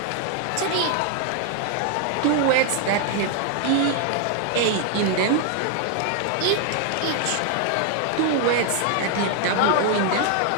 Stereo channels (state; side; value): different; both; correlation 0.00